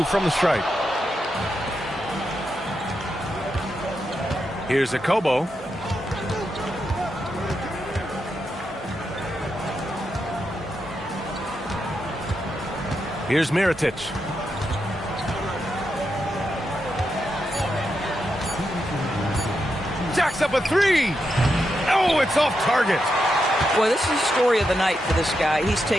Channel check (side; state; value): both; normal; correlation 0.85